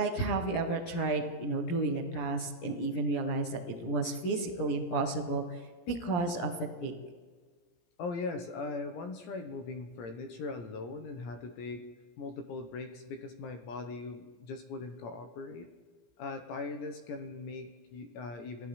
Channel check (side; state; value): right; late; 17 ms